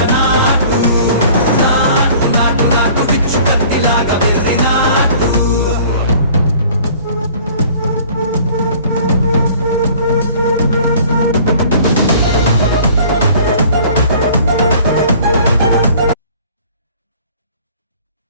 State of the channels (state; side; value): inverted; both; correlation -0.51